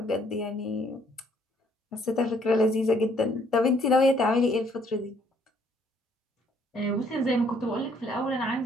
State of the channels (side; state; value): both; normal; correlation 0.65